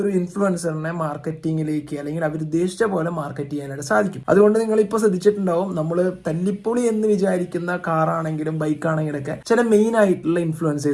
ഇൻഫ്ലുവൻസറിനെ മാർക്കറ്റിംഗിലേക്ക് അല്ലെങ്കിൽ അവർ ഉദ്ദേശിച്ച പോലെ മാർക്കറ്റ് ചെയ്യാനായിട്ട് സാധിക്കും. അതുകൊണ്ട് നിങ്ങൾ ഇപ്പോൾ ശ്രദ്ധിച്ചിട്ടുണ്ടാവും, നമ്മൾ തല്ലിപ്പൊളി എന്ന് വിചാരിക്കുന്ന കാറാണെങ്കിലും ബൈക്കാണെങ്കിലും ഒക്കെ ചില മെയിൻ ആയിട്ടുള്ള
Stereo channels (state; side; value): identical; both; correlation 1.00